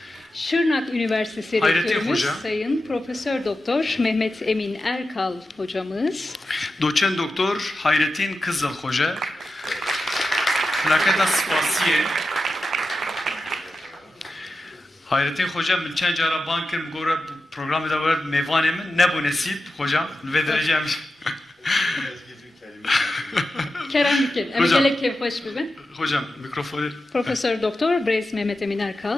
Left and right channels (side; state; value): both; normal; correlation 0.91